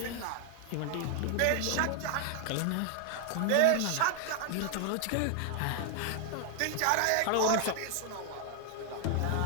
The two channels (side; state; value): both; different; correlation 0.00